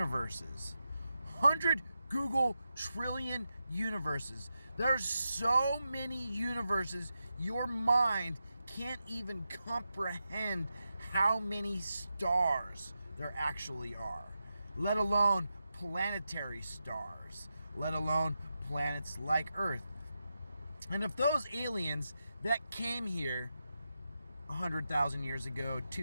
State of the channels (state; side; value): inverted; both; correlation -0.89